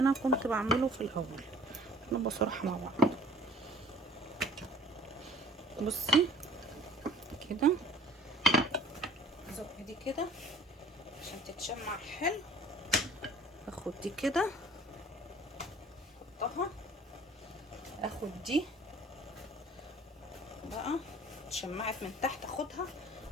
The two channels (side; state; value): both; normal; correlation 0.50